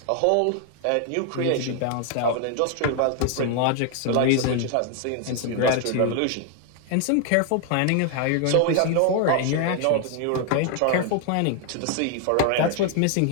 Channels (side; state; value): both; different; correlation 0.00